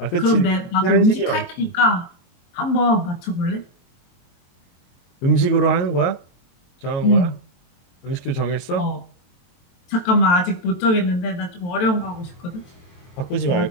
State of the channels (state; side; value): late; right; 23 ms